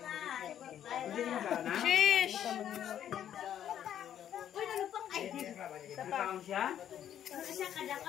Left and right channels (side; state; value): right; quieter; 10.3 dB